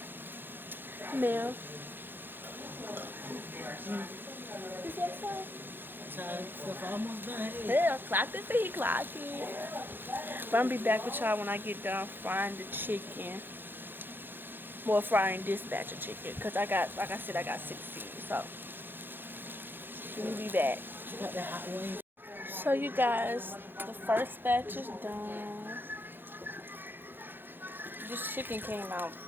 Mel. Is that so? Stuff almost done. Yeah, clock the thing, clock it. But I'm gonna be back with y'all when I get done frying the chicken. Well, frying this batch of chicken, because I got, like I said, I got 16. So we'll be back. You got that hot wing. So you guys, the first batch is done. This chicken came out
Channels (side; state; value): left; late; 0.098 ms